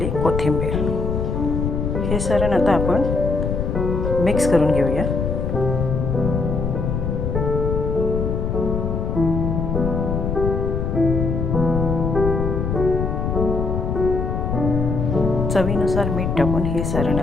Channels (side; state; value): left; noise; rumble, 1 dB below the sound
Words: कोथिंबीर। हे सारण आता आपण मिक्स करून घेऊया। चवीनुसार मीठ टाकून हे सारण